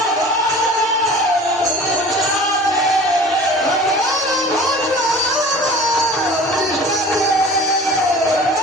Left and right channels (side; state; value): both; normal; correlation 0.42